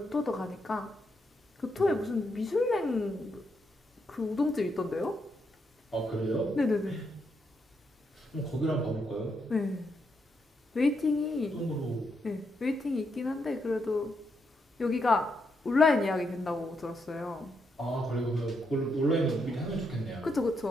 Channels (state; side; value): normal; both; correlation 0.80